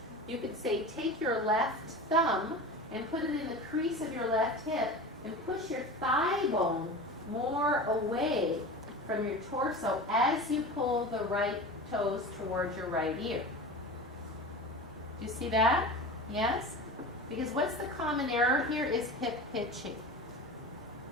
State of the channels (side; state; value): both; normal; correlation 0.32